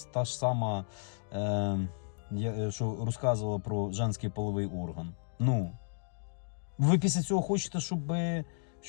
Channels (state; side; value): silent; right; digital silence